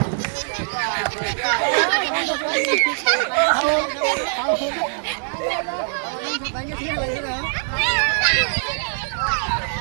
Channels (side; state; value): left; silent; digital silence